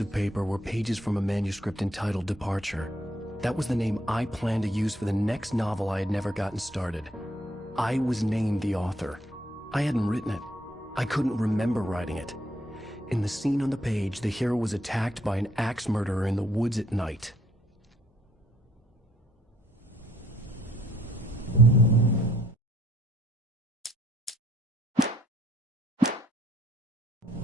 of paper were pages from a manuscript entitled Departure. That was the name I planned to use for the next novel I had never gotten started. I was named the author. I hadn't written it. I couldn't remember writing it. In the scene on the page, the hero was attacked by an axe murderer in the woods at night.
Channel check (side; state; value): both; normal; correlation 0.68